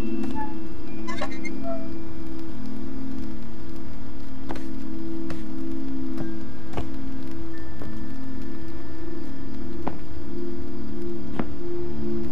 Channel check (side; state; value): both; normal; correlation 0.45